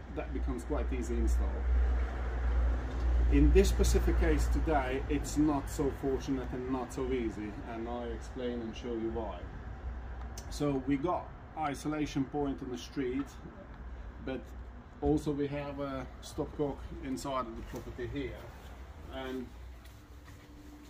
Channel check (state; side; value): identical; both; correlation 1.00